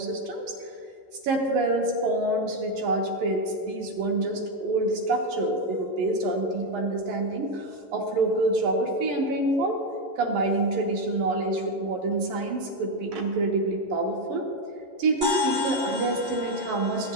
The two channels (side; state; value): left; late; 11 ms